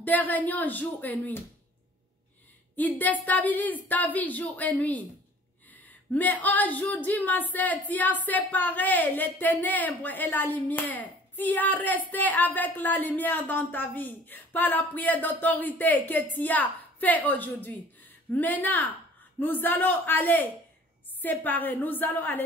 réunions jour et nuit. Ils déstabilisent ta vie jour et nuit. Mais aujourd'hui, ma sœur, tu as séparé les ténèbres et la lumière. Tu as resté avec la lumière dans ta vie par la prière d'autorité que tu as fait aujourd'hui. Maintenant, nous allons aller séparer. Nous allons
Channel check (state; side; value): normal; both; correlation 0.51